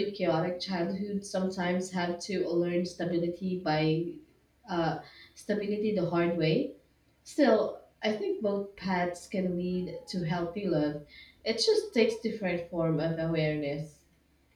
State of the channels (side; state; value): both; identical; correlation 1.00